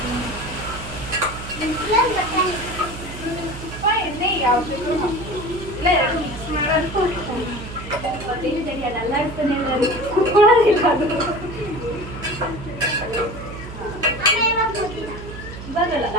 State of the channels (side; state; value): right; noise; hum, 11 dB below the sound